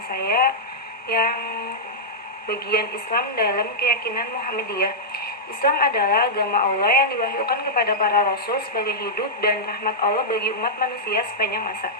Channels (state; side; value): normal; both; correlation -0.09